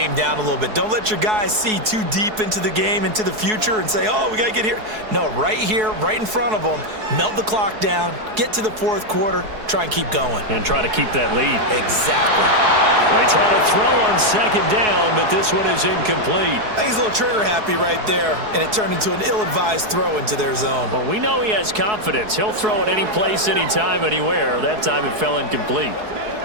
down a little bit. Don't let your guys see too deep into the game, into the future, and say, oh, we got to get here. No, right here, right in front of them, melt the clock down, get to the fourth quarter, try and keep going. And try to keep that lead. Exactly. They try to throw on second down, but this one is incomplete. I think he's a little trigger happy right there, and it turned into an ill-advised throw into their zone. Well, we know he has confidence. He'll throw it any place, anytime, anywhere. That time it fell incomplete.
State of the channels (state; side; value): late; left; 4.7 ms